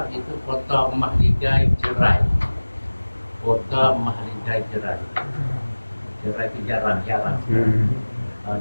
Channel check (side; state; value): both; inverted; correlation -1.00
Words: itu kota Mahligai Jerai. Kota Mahligai Jerai. Jerai itu jarang-jarang.